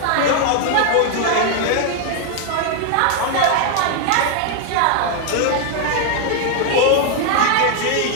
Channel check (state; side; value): different; both; correlation 0.00